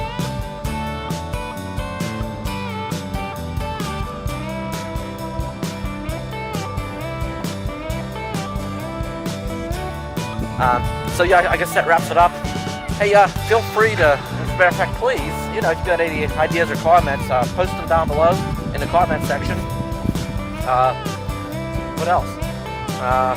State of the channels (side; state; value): both; identical; correlation 1.00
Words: So yeah, I guess that wraps it up. Hey, feel free to, as a matter of fact, please, if you've got any ideas or comments, post them down below in the comment section. What else?